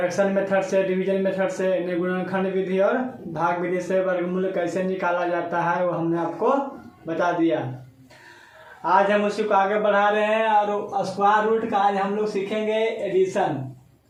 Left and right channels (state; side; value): identical; both; correlation 1.00